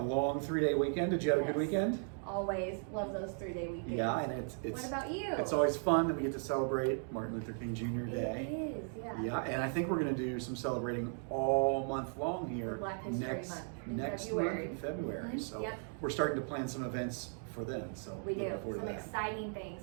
long 3-day weekend. Did you have a good Yes. weekend? Always love those 3-day weekends. Yeah, and it's. What about you? It's always fun that we get to celebrate Martin Luther King Jr. Day. It is, yeah. Yeah, and I think we're going to do some celebrating all month long here. Black History next Month next February. month in February. Mhm, So yep. we're starting to plan some events for then. So We do. looking forward Some to that. exciting things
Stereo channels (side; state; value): left; silent; 53 dB below the other